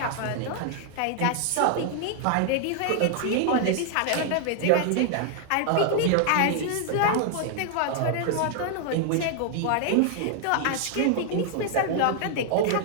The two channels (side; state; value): both; different; correlation 0.00